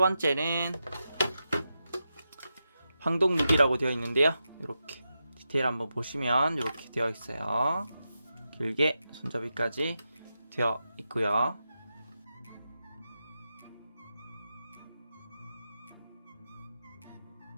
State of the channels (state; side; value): inverted; both; correlation -0.89